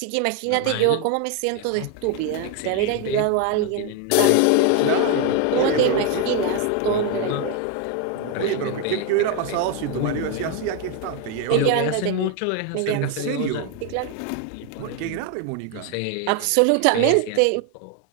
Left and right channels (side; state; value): both; different; correlation 0.01